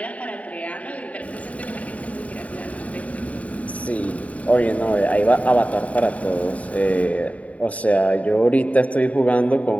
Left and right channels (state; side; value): late; right; 0.068 ms